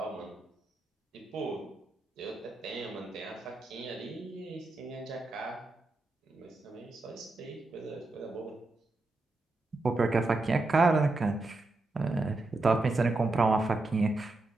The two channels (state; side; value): quieter; left; 3.1 dB